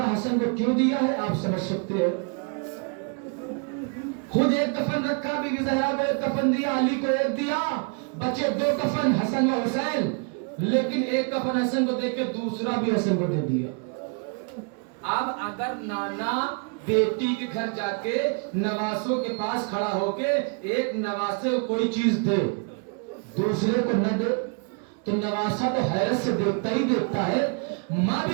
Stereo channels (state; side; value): quieter; left; 38.0 dB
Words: حسن کو کیوں دیا ہے آپ سمجھ سکتے ہیں؟ خود ایک کفن رکھا، بی بی زہرا کو ایک کفن دیا، علی کو ایک دیا، بچے 2 کفن حسن و حسین، لیکن ایک کفن حسن کو دے کے دوسرا بھی حسن کو دے دیا۔ اب اگر نانا بیٹی کے گھر جا کے نواسوں کے پاس کھڑا ہو کے ایک نواسے کو کوئی چیز دے دوسرے کو نہ دے تو نواسا تو حیرت سے دیکھتا ہی دیکھتا ہے۔ ماں